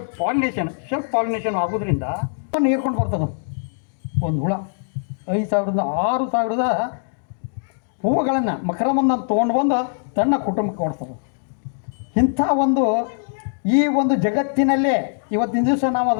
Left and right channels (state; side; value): silent; right; digital silence